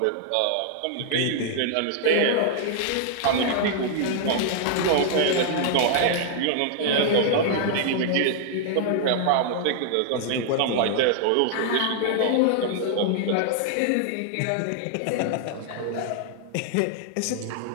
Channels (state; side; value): different; both; correlation -0.01